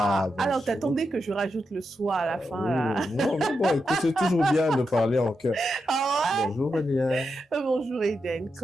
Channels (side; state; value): both; normal; correlation 0.87